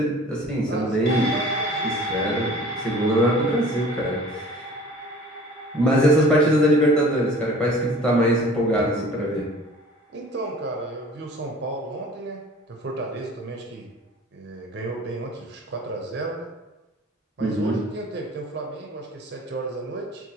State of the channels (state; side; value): normal; both; correlation 0.46